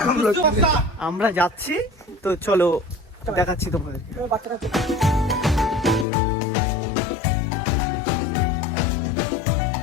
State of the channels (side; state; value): right; drops out; at 6.1 s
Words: हम लोग। আমরা যাচ্ছি, তো চলো দেখাচ্ছি তোমাদের। বাচ্চারা